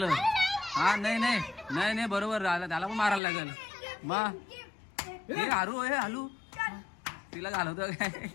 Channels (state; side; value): drops out; right; at 3.2 s